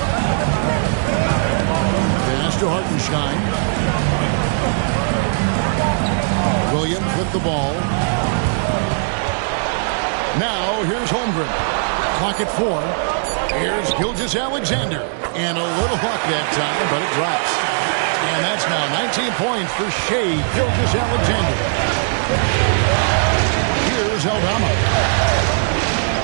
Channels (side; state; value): left; silent; digital silence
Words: Pass to Hartenstein. Williams with the ball. Now, here's Holmgren. Clock at 4. Here's Gilgeous-Alexander. And a little luck that time, but it drops. And that's now 19 points for Shai Gilgeous-Alexander. Here's Aldama.